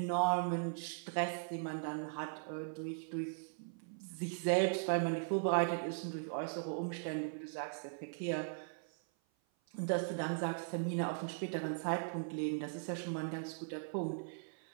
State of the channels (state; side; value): silent; left; 52 dB below the other